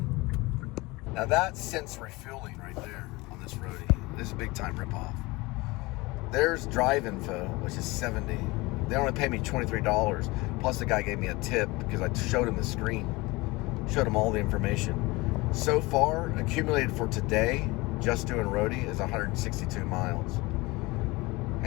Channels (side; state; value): right; quieter; 22.7 dB